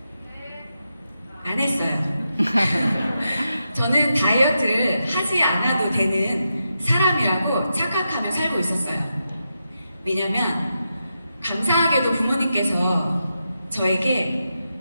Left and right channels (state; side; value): inverted; both; correlation -0.87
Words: 안 했어요. 저는 다이어트를 하지 않아도 되는 사람이라고 착각하며 살고 있었어요. 왜냐면 감사하게도 부모님께서 저에게